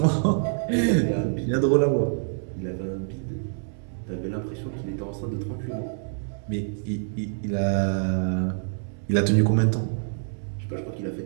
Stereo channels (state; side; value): silent; left; digital silence